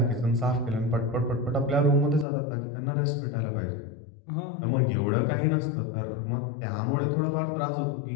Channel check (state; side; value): drops out; right; at 2.2 s